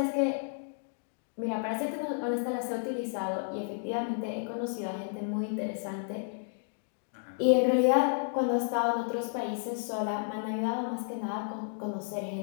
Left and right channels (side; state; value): right; silent; digital silence